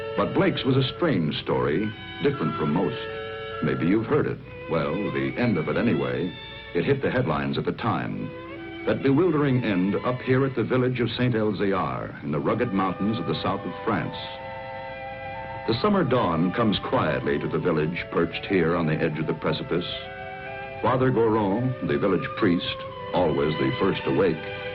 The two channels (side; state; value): both; identical; correlation 1.00